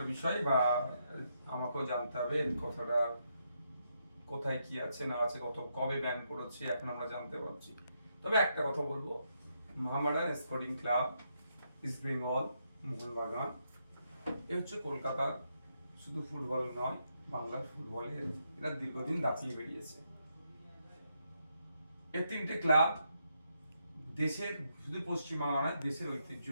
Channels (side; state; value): both; inverted; correlation -0.79